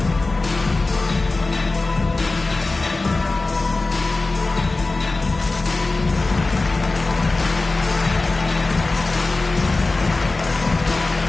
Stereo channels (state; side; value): quieter; right; 3.3 dB